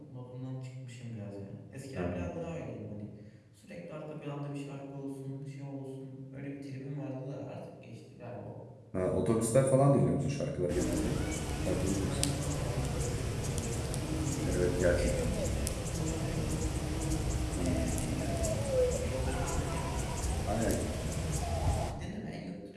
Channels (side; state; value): both; identical; correlation 1.00